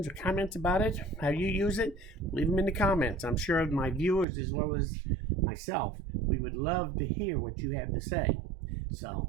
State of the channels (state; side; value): drops out; left; at 4.2 s